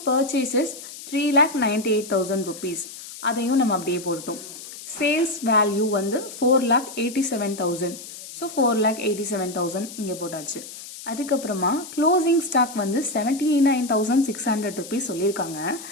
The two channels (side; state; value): left; noise; hiss, 13 dB below the sound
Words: purchases 3,98,000 rupees. அதையும் நம்ம அப்படியே போட்டோம். சேல்ஸ் வேல்யூ வந்து 4,87,000. ஸோ 4,87,000 இங்கே போட்டாச்சு. அதுக்கப்புறமா க்ளோசிங் ஸ்டாக் வந்து 79,600 rupees சொல்லியிருக்காங்க.